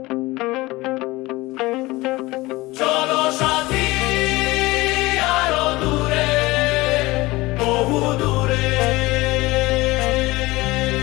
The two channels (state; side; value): quieter; right; 20.6 dB